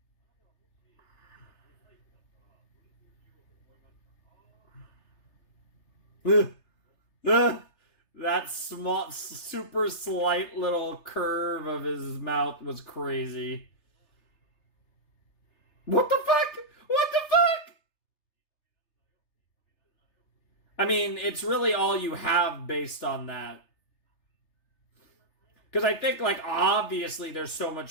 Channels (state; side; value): late; right; 3.3 ms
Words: That small, super slight little curve of his mouth was crazy. What the fuck? What the fuck? I mean, it's really all you have based on that. Because I think, like, obviously there's so